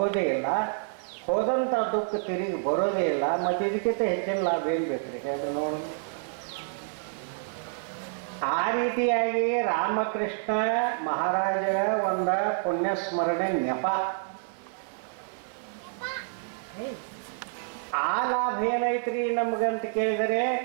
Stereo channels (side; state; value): left; silent; 59 dB below the other